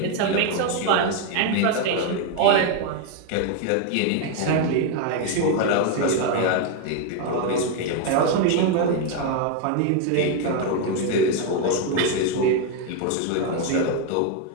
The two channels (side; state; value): both; different; correlation 0.01